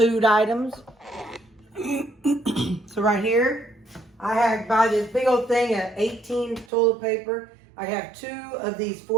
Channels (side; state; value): left; drops out; at 6.7 s